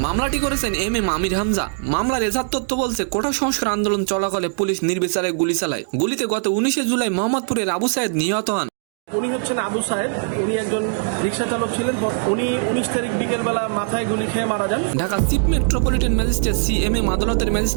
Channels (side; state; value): left; silent; digital silence